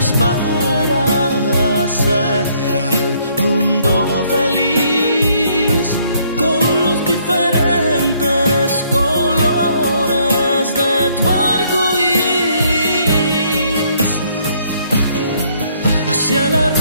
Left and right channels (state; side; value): inverted; both; correlation -0.67